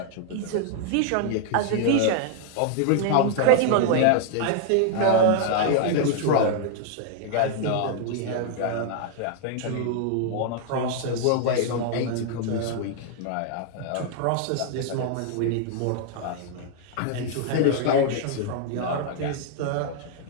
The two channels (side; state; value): both; different; correlation 0.00